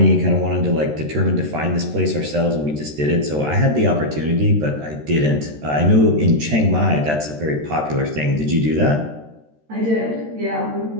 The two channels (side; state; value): left; late; 13 ms